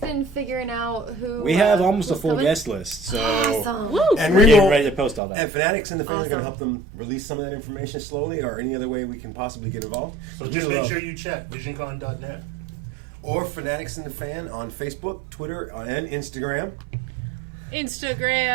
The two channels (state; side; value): drops out; left; at 5.2 s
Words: been figuring out who? We have almost a who's full coming? guest list, so Awesome. Woo! And we're we getting will, ready to post all that. and Fanatics and the Fan are going to Awesome. help them release some of that information slowly, or any other way we can possibly get involved. So just make sure you check VisionCon.net. Or Fanatics and the Fan on Facebook, Twitter, and Instagram.